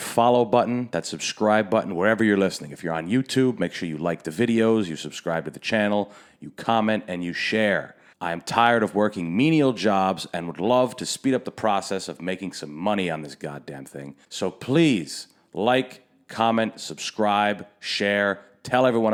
follow button, that subscribe button, wherever you're listening. If you're on YouTube, make sure you like the videos, you subscribe to the channel, you comment, and you share. I am tired of working menial jobs and would love to speed up the process of making some money on this goddamn thing. So please like, comment, subscribe, share, tell everyone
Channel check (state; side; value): identical; both; correlation 1.00